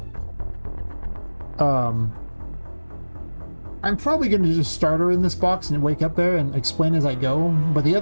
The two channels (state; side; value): inverted; both; correlation -1.00